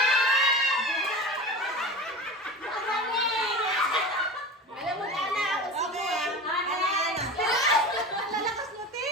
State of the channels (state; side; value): normal; both; correlation 0.31